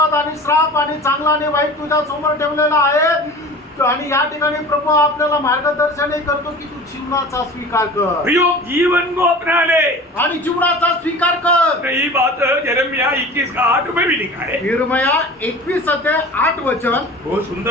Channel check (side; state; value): both; normal; correlation 0.39